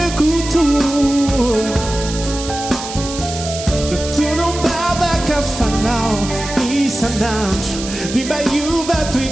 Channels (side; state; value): right; noise; hiss, 9 dB below the sound